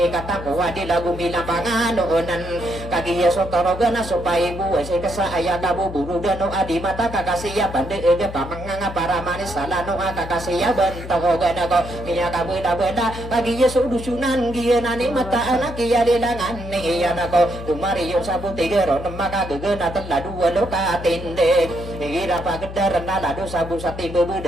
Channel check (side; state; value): left; noise; hum, 10 dB below the sound